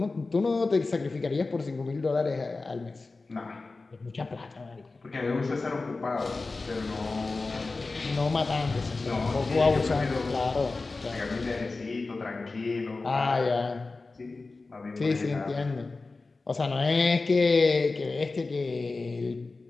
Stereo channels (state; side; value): quieter; right; 3.7 dB